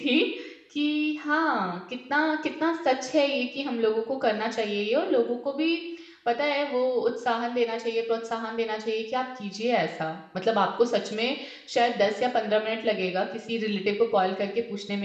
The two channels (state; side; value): identical; both; correlation 1.00